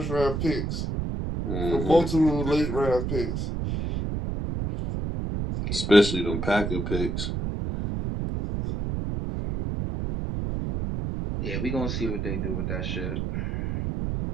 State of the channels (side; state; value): right; noise; rumble, 2 dB below the sound